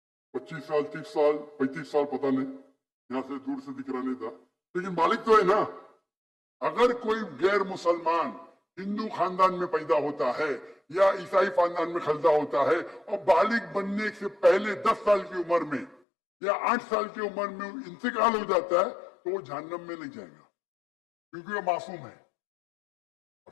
25 साल 30 साल 35 साल पता नहीं, यहां से दूर से दिख रहा नहीं था, लेकिन बालिग तो है ना। अगर कोई गैर मुसलमान हिंदू खानदान में पैदा होता है या ईसाई खानदान में पैदा होता है और बालिग बनने से पहले 10 साल की उम्र में या 8 साल की उम्र में इंतकाल हो जाता है तो वो जहन्नम में नहीं जाएगा, क्योंकि वो मासूम है। आप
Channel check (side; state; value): right; drops out; at 16.0 s